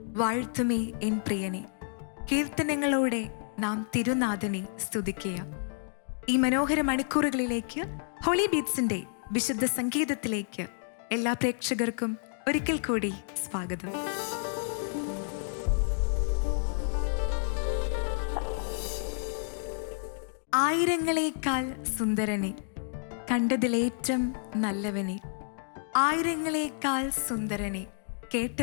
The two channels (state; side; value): silent; right; digital silence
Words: വാഴ്ത്തുമേ എൻ പ്രിയനെ, കീർത്തനങ്ങളോടെ നാം തിരുനാഥനെ സ്തുതിക്കുക. ഈ മനോഹര മണിക്കൂറുകളിലേക്ക് ഹോളി ബീറ്റ്സിന്റെ വിശുദ്ധ സംഗീതത്തിലേക്ക് എല്ലാ പ്രേക്ഷകർക്കും ഒരിക്കൽ കൂടി സ്വാഗതം. ആയിരങ്ങളേക്കാൾ സുന്ദരനെ, കണ്ടതിലേറ്റം നല്ലവനെ, ആയിരങ്ങളേക്കാൾ സുന്ദരനെ,